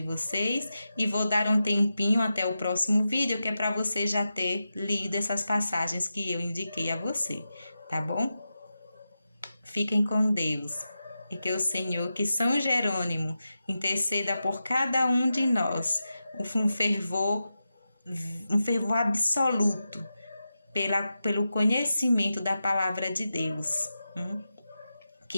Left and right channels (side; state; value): both; inverted; correlation -0.91